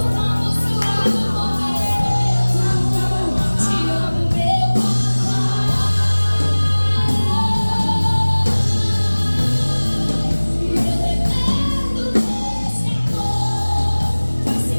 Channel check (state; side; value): inverted; both; correlation -1.00